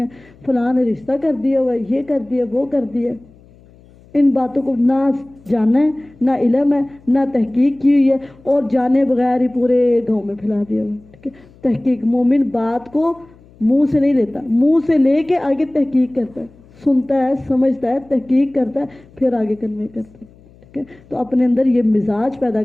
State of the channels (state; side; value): noise; left; hum, 26 dB below the sound